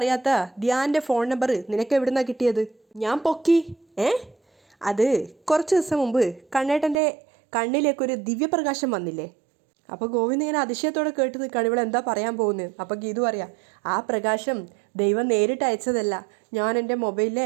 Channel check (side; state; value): left; drops out; at 7.0 s